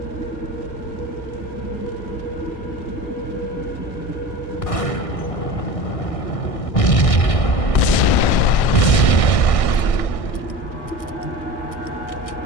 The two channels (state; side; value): late; right; 1.6 ms